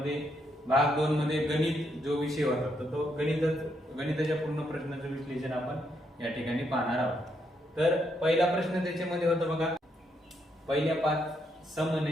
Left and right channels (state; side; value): normal; both; correlation 0.77